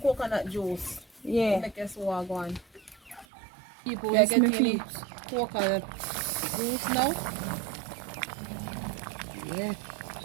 coconut juice, yeah. Make us go on. People, we are getting coconut juice now. Yeah.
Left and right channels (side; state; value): left; drops out; at 3.2 s